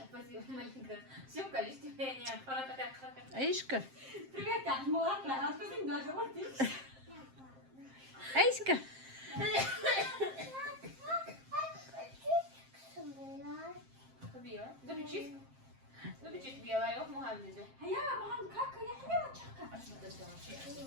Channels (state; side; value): late; left; 7.6 ms